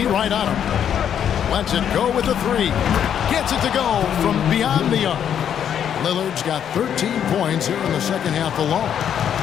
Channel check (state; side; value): quieter; right; 9.0 dB